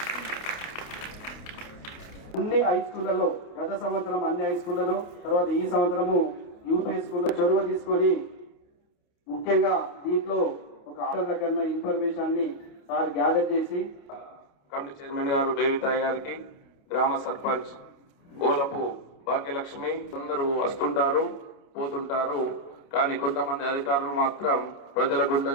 అన్ని హై స్కూళ్ళలో గత సంవత్సరం అన్ని హై స్కూళ్ళలో తర్వాత ఈ సంవత్సరము యూపీ స్కూల్లో చొరవ తీసుకొని ముఖ్యంగా దీంట్లో ఒక ఆటల కన్నా ఇన్ఫర్మేషన్ని సార్ గ్యాదర్ చేసి కమిటీ చైర్మన్ గారు బేవితాయ్ గారికి, గ్రామ సర్పంచ్ ఓలపు భాగ్యలక్ష్మి అందరూ వస్తుంటారు పోతుంటారు. కానీ కొంతమంది అధికారులు మాత్రం ప్రజల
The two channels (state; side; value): late; right; 28 ms